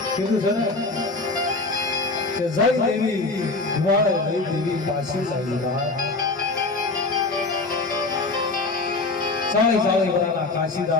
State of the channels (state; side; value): quieter; right; 3.4 dB